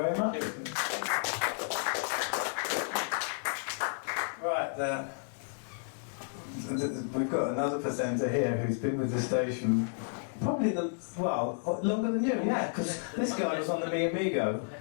much. Right, we've got another presenter here who's been with the station probably longer than you, yeah, because this guy was on the Mi Amigo.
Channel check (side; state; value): right; silent; digital silence